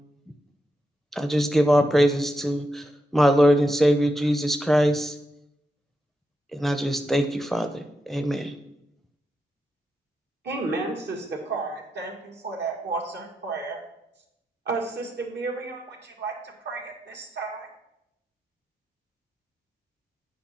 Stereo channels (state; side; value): normal; both; correlation 0.85